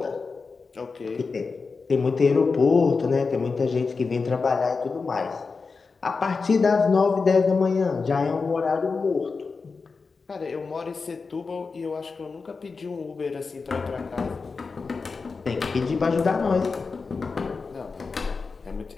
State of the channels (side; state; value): right; quieter; 4.6 dB